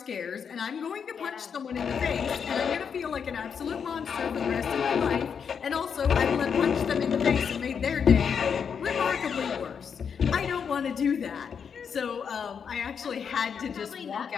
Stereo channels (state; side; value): quieter; right; 6.9 dB